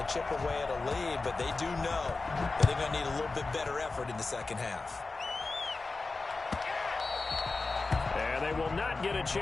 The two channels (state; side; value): quieter; right; 3.7 dB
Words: to chip away at a lead, but they do know that they're going to need a little bit better effort in the second half. And they will not get a